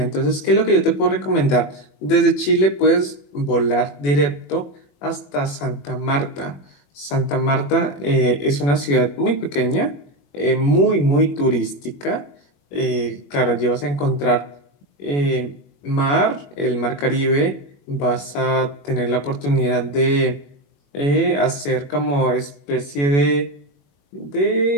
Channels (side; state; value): right; late; 21 ms